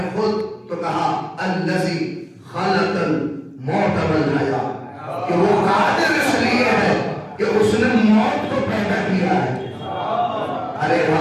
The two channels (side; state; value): both; identical; correlation 1.00